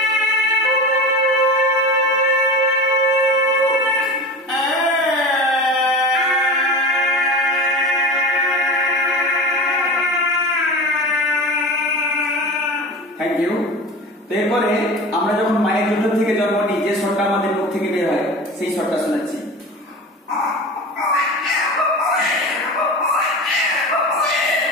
Thank you. তো এরপরে আমরা যখন মায়ের দুধ থেকে জন্ম নিই, যে স্বরটা আমাদের মুখ থেকে বের হয় সেই স্বরটা শোনাচ্ছি।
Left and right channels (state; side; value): normal; both; correlation 0.31